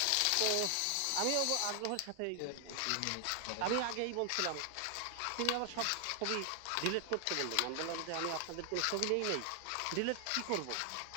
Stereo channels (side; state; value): both; different; correlation 0.00